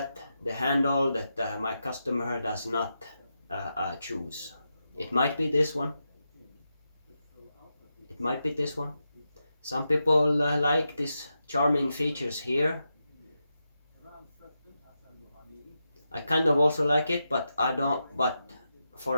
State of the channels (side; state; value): both; inverted; correlation -0.87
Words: the handle that my customer does not choose. It might be this one. It might be this one. Some people like these charming features here. I kind of also like it, but I don't. But